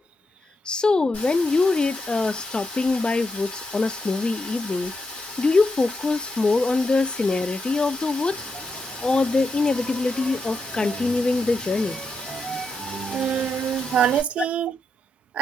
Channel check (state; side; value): normal; both; correlation 0.83